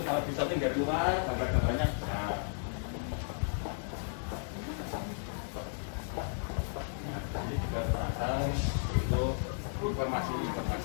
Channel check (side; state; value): right; silent; digital silence